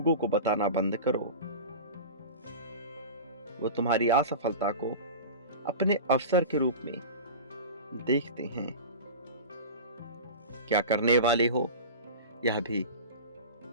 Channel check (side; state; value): both; inverted; correlation -0.31